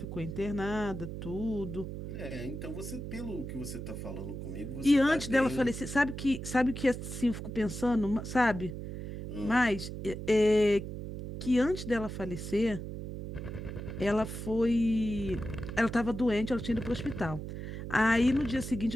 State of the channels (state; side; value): noise; right; hum, 7 dB below the sound